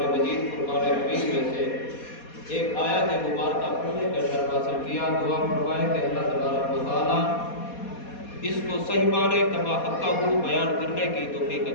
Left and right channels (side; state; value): right; late; 4.2 ms